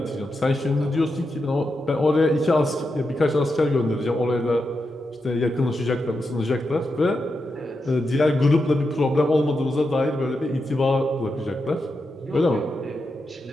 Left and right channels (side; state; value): both; normal; correlation 0.87